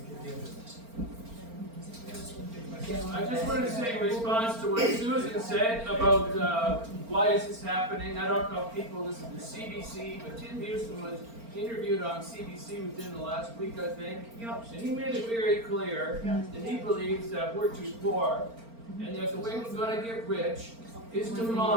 I just wanted to say in response to what Susan said about why is this happening. I don't know if people listen to CBC, but Tim Houston was interviewed on CBC within the last week, I think. And he made it very clear that he believes that we're too poor, and that the way we're going to get rich is to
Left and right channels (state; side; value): late; left; 4.4 ms